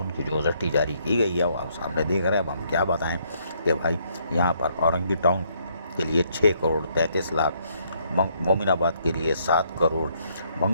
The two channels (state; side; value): inverted; both; correlation -0.70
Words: की जो ओजरटी जारी की गई है वो आप सामने देख रहे हैं। अब हम क्या बताएं कि भाई यहाँ पर औरंगी टाउन के लिए 6 करोड़ 33 लाख, मोमिनाबाद के लिए 7 करोड़,